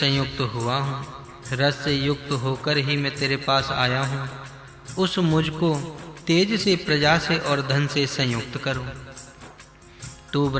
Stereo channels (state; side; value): identical; both; correlation 1.00